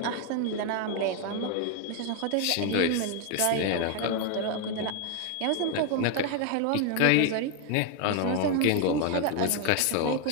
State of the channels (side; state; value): both; different; correlation 0.01